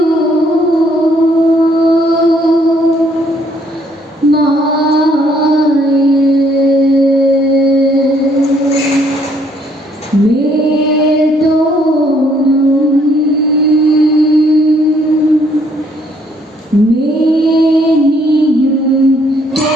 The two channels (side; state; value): both; normal; correlation 0.66